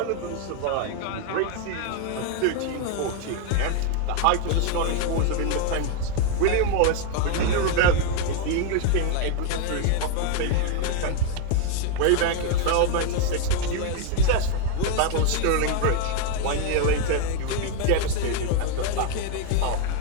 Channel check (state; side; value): different; both; correlation 0.01